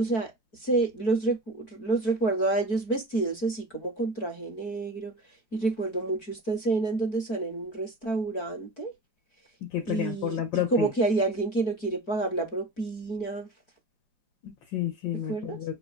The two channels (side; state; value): right; late; 4.5 ms